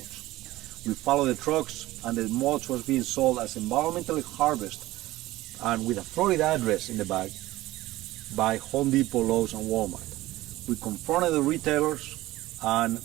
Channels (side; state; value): left; quieter; 17.3 dB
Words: We follow the trucks, and the mulch was being sold as environmentally harvested and with a Florida address in the bag by Home Depot, Lowe's, and Walmart. We confronted the retailers, and